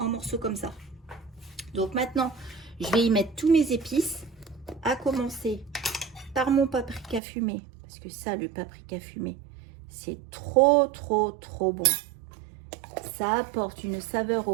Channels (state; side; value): drops out; left; at 7.2 s